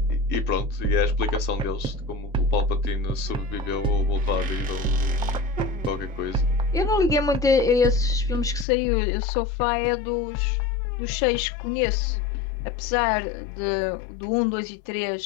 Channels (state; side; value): drops out; right; at 8.7 s